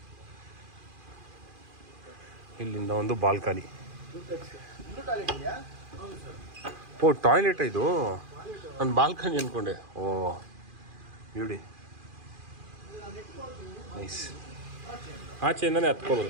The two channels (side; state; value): left; late; 2.4 ms